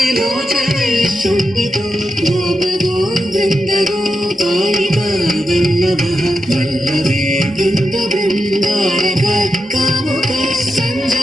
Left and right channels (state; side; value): normal; both; correlation 0.88